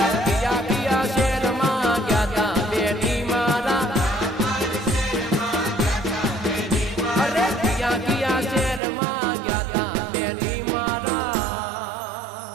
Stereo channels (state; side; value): drops out; left; at 8.8 s